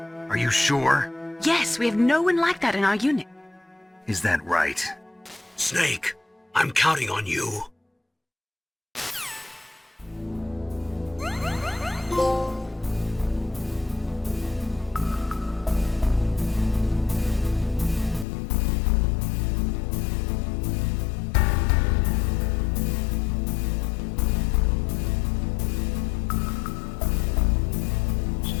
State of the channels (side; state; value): right; drops out; at 18.2 s